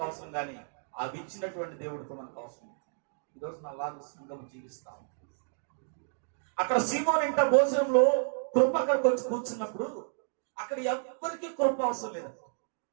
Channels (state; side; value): silent; left; digital silence